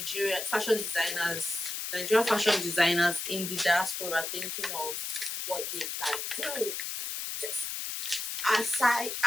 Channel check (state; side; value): noise; left; hiss, 4 dB below the sound